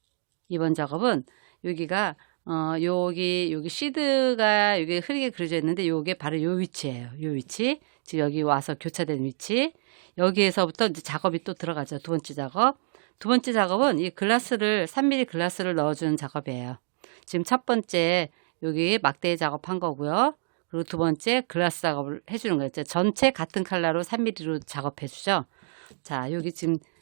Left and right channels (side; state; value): left; silent; digital silence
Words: 2번 작업은 여기가 여기 시드가 여기 흐리게 그려져 있는데 요게 바로 요 위치예요. 요 위치 지금 여기 와서 교차된 위치 여기에서부터 이제 작업이 또 들어가죠. 두 번째 작업. 두 번째 작업은 이 글라스를 3mm 글라스를 넣어주는 작업이에요. 지금 첫 번째 여기 막대 작업한 거고요. 그리고 두 번째 글라스 작업을 해주는 거예요. 전체 같은 컬러로 3mm로 작업해 주죠. 자 여기 지금